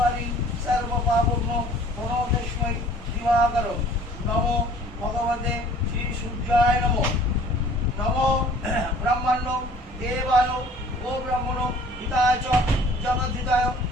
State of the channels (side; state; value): both; normal; correlation 0.51